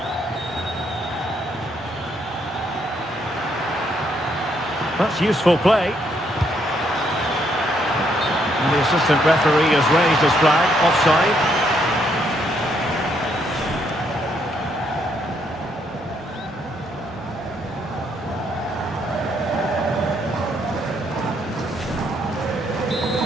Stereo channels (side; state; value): both; normal; correlation 0.73